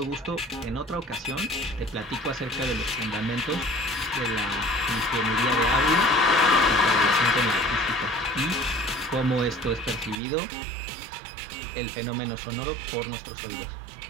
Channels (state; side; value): drops out; left; at 10.2 s